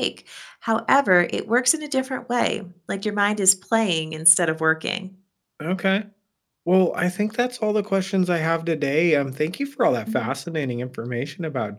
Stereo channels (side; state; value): both; identical; correlation 1.00